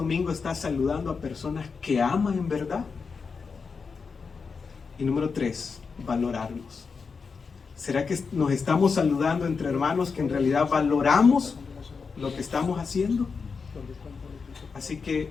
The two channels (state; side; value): quieter; right; 5.2 dB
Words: está saludando a personas que ama en verdad? Y número 3, valorarnos. ¿Será que nos estamos saludando entre hermanos que en realidad valoramos lo que estamos haciendo? Así